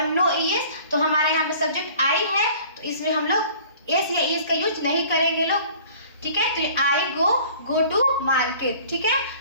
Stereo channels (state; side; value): inverted; both; correlation -0.49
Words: नो ई एस, तो हमारा यहाँ पे सब्जेक्ट आई है, तो इसमें हम लोग एस या ई एस का यूज नहीं करेंगे लोग, ठीक है। तो आई गो टू मार्केट, ठीक